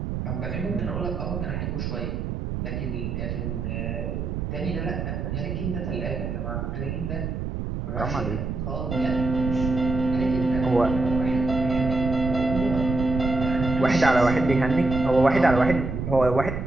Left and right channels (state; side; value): noise; right; rumble, 4 dB below the sound